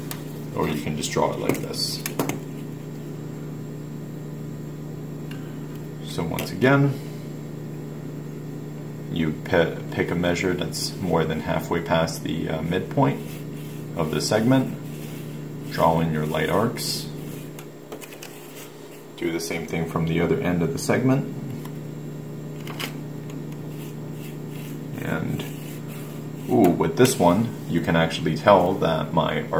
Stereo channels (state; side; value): identical; both; correlation 1.00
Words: or you can just draw it like this. So once again, you pick a measure that's more than halfway past the midpoint of the segment, draw in your light arcs. Do the same thing from the other end of the segment. And with this one, you can actually tell that my